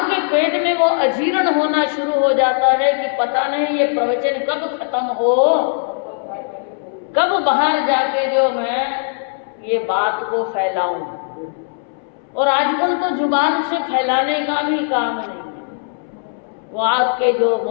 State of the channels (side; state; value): right; silent; 64 dB below the other